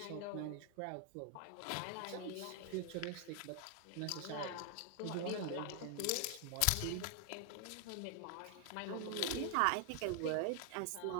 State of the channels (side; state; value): both; different; correlation 0.00